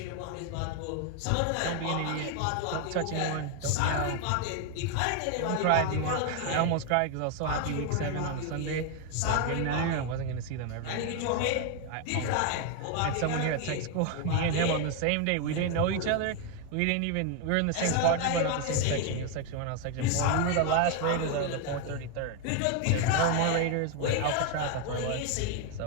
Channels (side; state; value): both; different; correlation 0.01